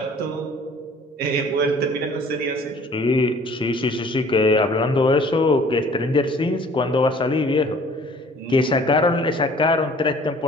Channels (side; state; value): both; normal; correlation 0.53